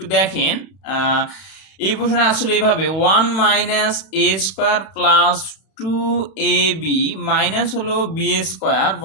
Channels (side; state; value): right; late; 31 ms